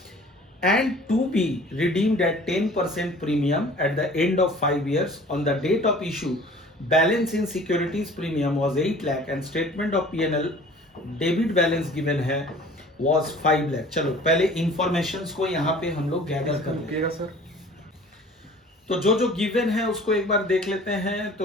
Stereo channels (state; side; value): normal; both; correlation 0.48